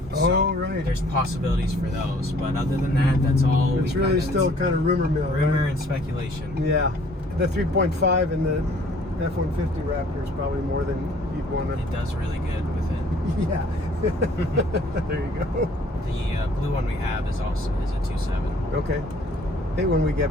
So right. There's possibilities for those, but other than that, that's all. It's really still kind of rumor mill. Rumor right? and speculation. Yeah, the 3.5 in the F-150 Raptor is probably more than you'd want to. It does really good with it. Yeah. There you go. The blue one we have is a 2.7. Okay. Hey, when we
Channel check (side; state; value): both; normal; correlation 0.57